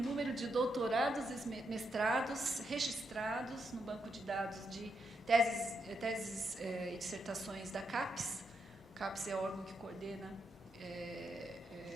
de doutorados e mestrados registrados no banco de dados de teses e dissertações da CAPES. O CAPES é o órgão que coordena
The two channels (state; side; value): normal; both; correlation 0.81